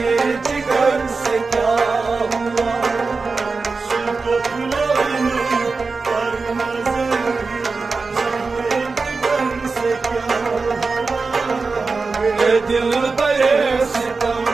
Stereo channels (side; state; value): left; quieter; 4.2 dB